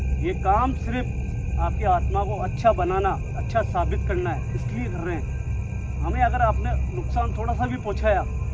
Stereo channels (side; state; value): both; identical; correlation 1.00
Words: ये काम सिर्फ आपकी आत्मा को अच्छा बनाना, अच्छा साबित करना है, इसलिए कर रहे हैं। हमें अगर आपने नुकसान थोड़ा सा भी पहुंचाया